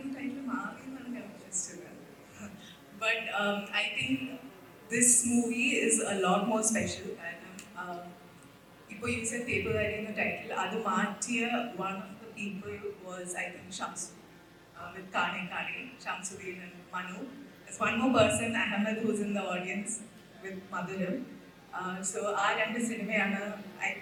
But I think this movie is a lot more special. You said Tepuvali in the title. Adu Martiya, one of the people was, I think, Shamsu. With Kane, Shamsuddin and Manu. There's one more person, Ahmed, who's in the audience with Madhuram. So our end cinema, I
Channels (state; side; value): identical; both; correlation 1.00